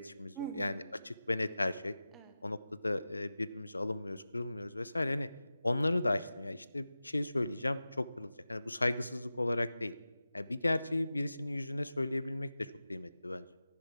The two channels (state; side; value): inverted; both; correlation -0.95